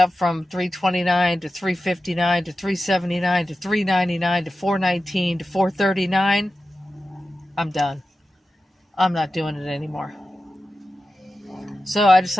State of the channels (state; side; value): normal; both; correlation 0.92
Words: from $3.29 to $3.59 to $3.79 to $3.99 to $4.19 to $4.39, I'm done. I'm not doing it anymore. So I